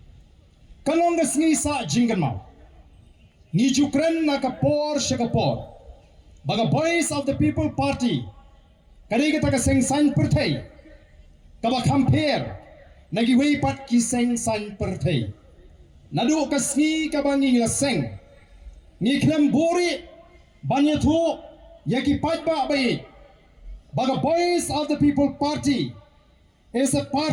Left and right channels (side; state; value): both; identical; correlation 1.00